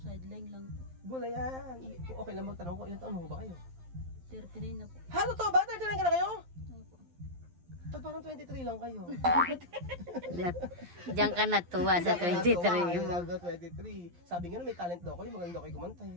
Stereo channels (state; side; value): late; left; 11 ms